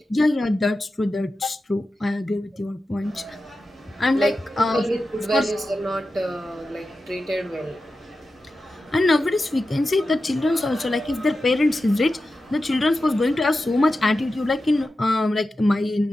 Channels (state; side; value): normal; both; correlation 0.92